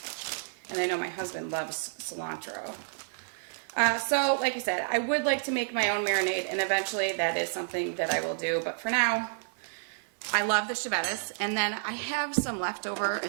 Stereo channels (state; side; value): silent; left; digital silence